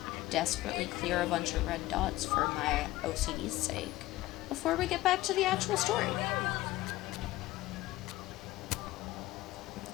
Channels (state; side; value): quieter; right; 17.1 dB